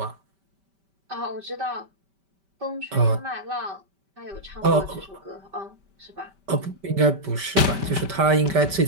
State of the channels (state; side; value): late; left; 5.1 ms